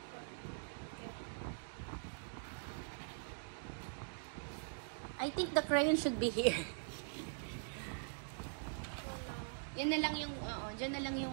I think the crayon should be here. Yan na lang yung, dyan na lang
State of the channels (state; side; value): silent; left; digital silence